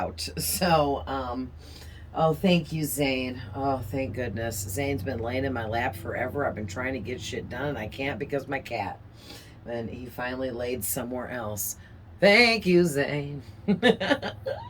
Oh, thank you, Zane. Oh, thank goodness. Zane's been laying in my lap forever. I've been trying to get shit done and I can't because my cat. And he finally laid somewhere else. Thank you, Zane.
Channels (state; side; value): identical; both; correlation 1.00